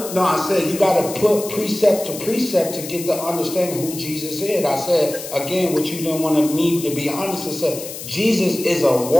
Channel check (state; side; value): noise; left; hiss, 10 dB below the sound